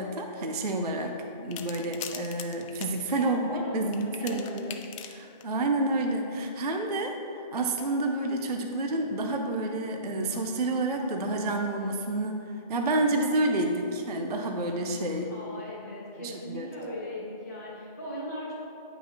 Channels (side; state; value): both; inverted; correlation -0.36